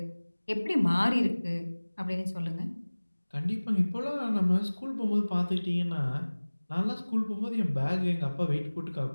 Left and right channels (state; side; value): inverted; both; correlation -1.00